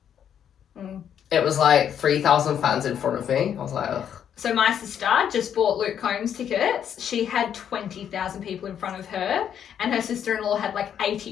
Mm. It was like 3,000 fans in front of me. I was like, ugh. So my sister just bought Luke Combs tickets. She had 20,000 people in front of her, and her sister-in-law had like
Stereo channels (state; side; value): quieter; right; 9.0 dB